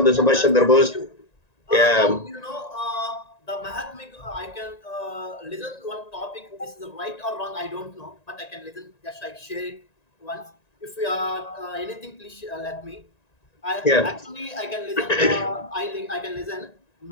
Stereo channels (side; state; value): right; late; 1.9 ms